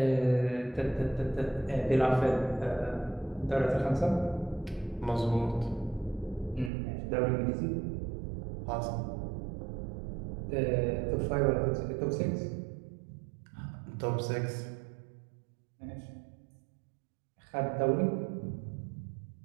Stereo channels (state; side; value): drops out; left; at 6.7 s